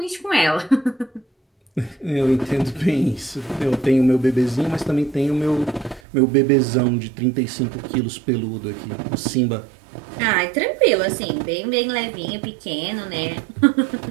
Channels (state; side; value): drops out; left; at 6.0 s